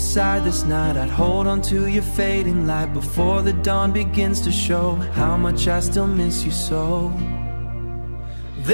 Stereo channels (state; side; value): inverted; both; correlation -1.00